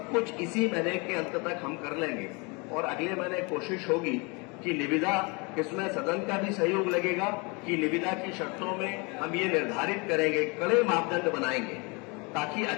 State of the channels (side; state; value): right; quieter; 29.6 dB